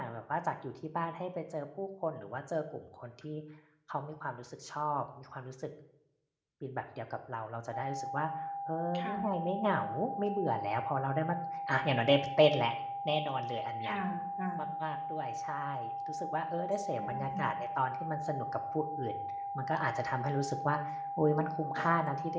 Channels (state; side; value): identical; both; correlation 1.00